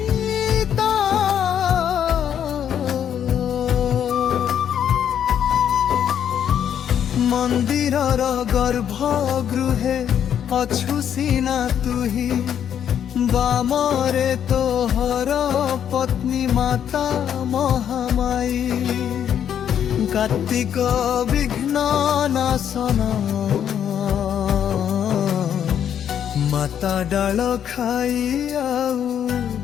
মন্দিরর গর্ভগৃহে অছু সিনা তুহি বামরে তোহর পত্নী মাতা মহামায়ী কার্তিক বিঘ্ন নাশন মাতা ডাল খাই আউ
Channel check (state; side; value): quieter; right; 9.2 dB